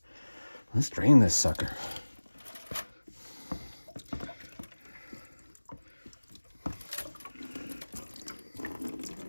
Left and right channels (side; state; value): both; inverted; correlation -1.00